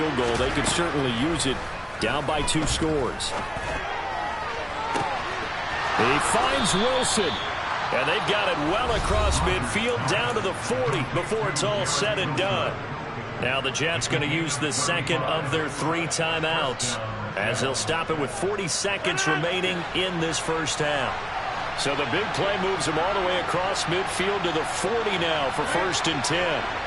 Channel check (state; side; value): identical; both; correlation 1.00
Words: goal. They could certainly use it, down by 2 scores. He finds Wilson, and they've got it well across midfield, down to the 40 before it's all said and done. Now the Jets going to use the second of their 3 timeouts, as they'll stop it with 40 seconds remaining in this first half. So the big play moves him all the way across midfield to the 40 now for 1st and 10.